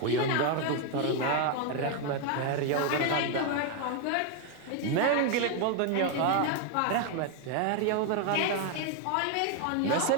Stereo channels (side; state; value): both; different; correlation 0.01